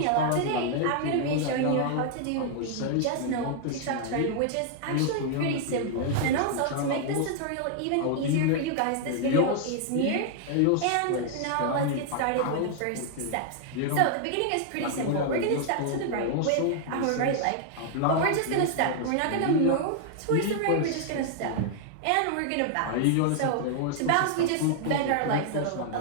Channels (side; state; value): both; different; correlation 0.00